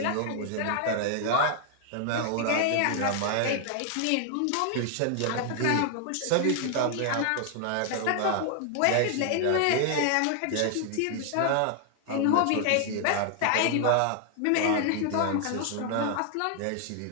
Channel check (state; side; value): different; both; correlation 0.00